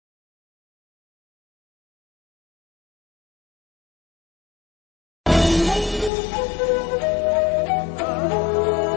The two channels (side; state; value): right; drops out; at 6.1 s